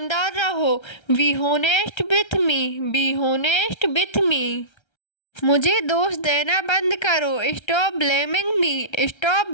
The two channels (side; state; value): right; late; 1.3 ms